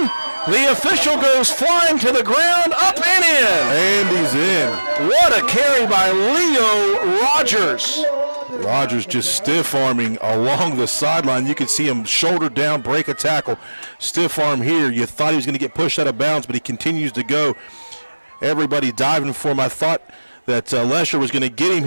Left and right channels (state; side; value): inverted; both; correlation -1.00